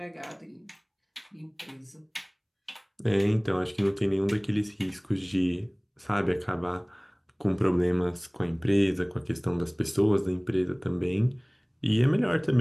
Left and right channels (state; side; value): identical; both; correlation 1.00